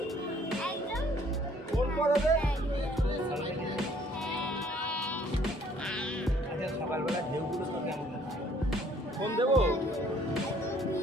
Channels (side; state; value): both; normal; correlation 0.60